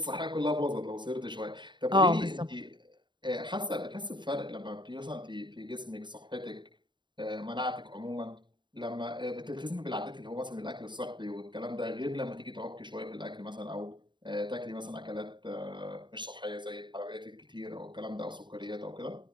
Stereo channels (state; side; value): late; left; 0.22 ms